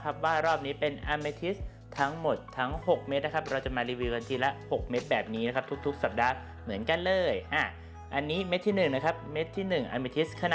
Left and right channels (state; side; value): identical; both; correlation 1.00